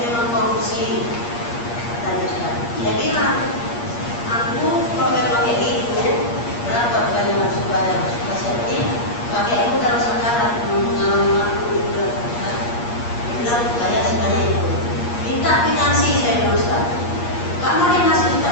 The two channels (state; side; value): late; right; 8.5 ms